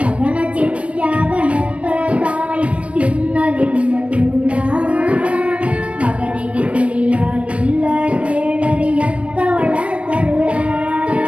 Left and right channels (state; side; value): late; left; 0.062 ms